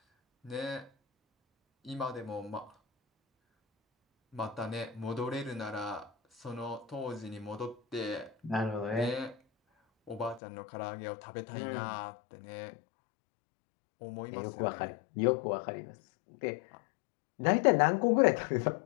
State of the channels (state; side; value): drops out; right; at 10.4 s